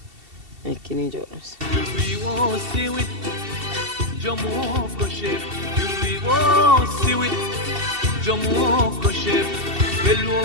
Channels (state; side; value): late; left; 2.7 ms